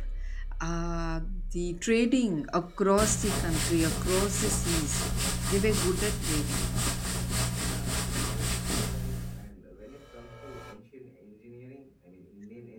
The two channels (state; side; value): identical; both; correlation 1.00